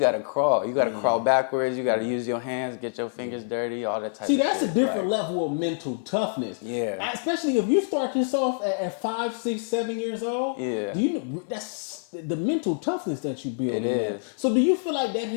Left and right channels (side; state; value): right; silent; 55 dB below the other